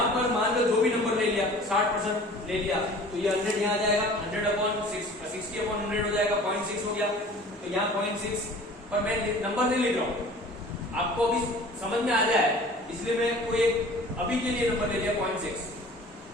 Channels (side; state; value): both; normal; correlation 0.45